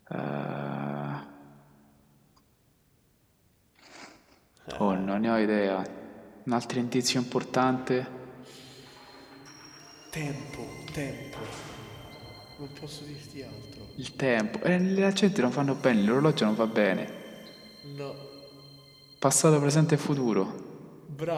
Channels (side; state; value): both; identical; correlation 1.00